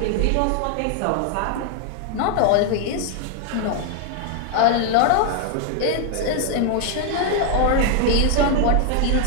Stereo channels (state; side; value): different; both; correlation 0.00